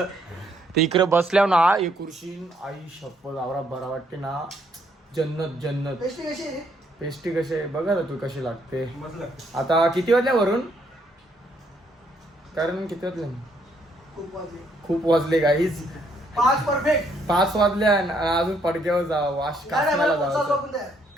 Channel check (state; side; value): normal; both; correlation 0.70